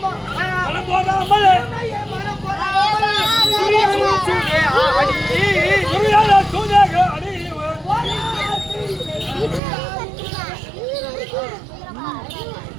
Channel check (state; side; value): drops out; left; at 9.6 s